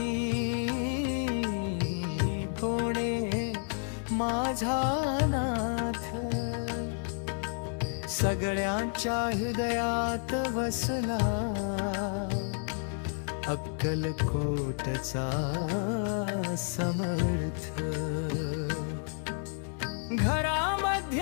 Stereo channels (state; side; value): silent; right; 55 dB below the other